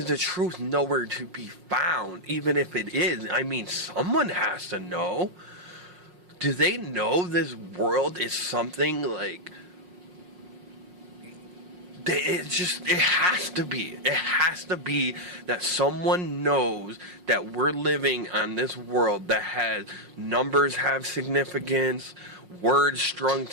the truth nowhere to be found? Even if it is, I mean, someone has to know. Do they know this world is something like... It has to be. It has to be that someone knows that we're living on this world that has numbers have significance, words strung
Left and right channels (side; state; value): left; late; 5.5 ms